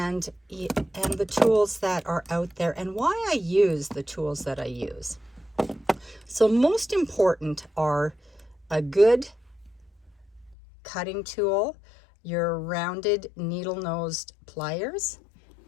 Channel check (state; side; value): drops out; right; at 10.6 s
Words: the tools that are out there and why I use the tools that I use. So most important are a good cutting tool, your rounded needle-nosed pliers,